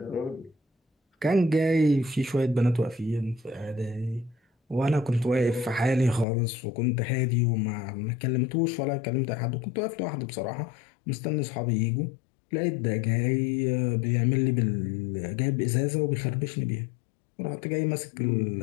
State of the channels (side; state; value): right; drops out; at 6.2 s